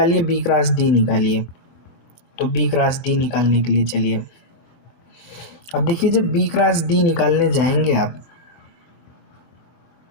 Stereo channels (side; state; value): right; late; 24 ms